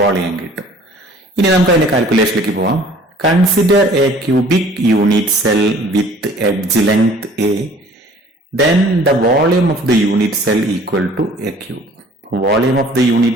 കിട്ടും. ഇനി നമുക്ക് അതിന്റെ കാൽക്കുലേഷനിലേക്ക് പോവാം. Consider a cubic unit cell with edge length A, then the volume of the unit cell equal to A cube. Volume of the unit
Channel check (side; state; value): both; normal; correlation 0.52